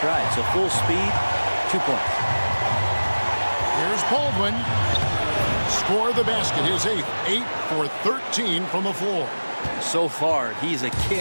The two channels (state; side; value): inverted; both; correlation -1.00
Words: so full speed, 2 points. Here's Baldwin. Score the basket, his 8th. 8 for 13 from the floor. So far, he's a